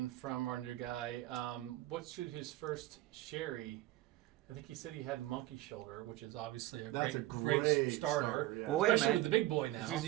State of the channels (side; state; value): left; quieter; 16.4 dB